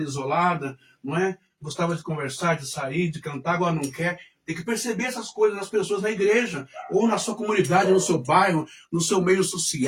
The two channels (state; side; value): identical; both; correlation 1.00